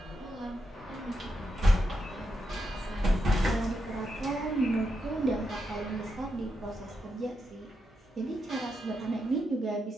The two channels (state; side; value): normal; both; correlation 0.84